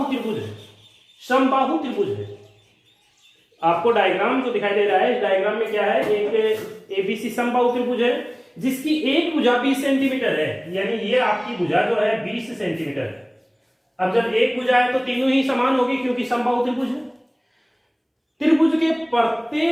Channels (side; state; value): both; identical; correlation 1.00